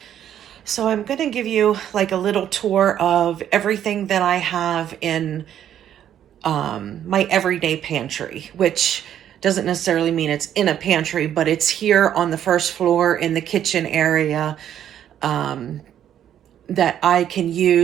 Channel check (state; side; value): quieter; left; 10.4 dB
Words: So I'm going to give you like a little tour of everything that I have in my everyday pantry, which doesn't necessarily mean it's in a pantry, but it's here on the first floor in the kitchen area that I can